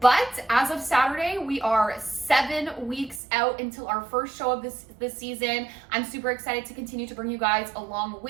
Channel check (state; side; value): drops out; left; at 3.2 s